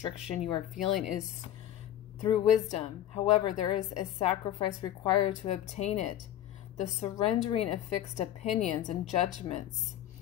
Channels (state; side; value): quieter; right; 11.9 dB